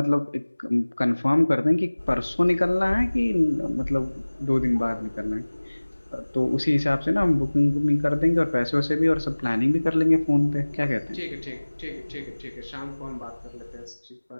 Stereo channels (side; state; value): both; inverted; correlation -1.00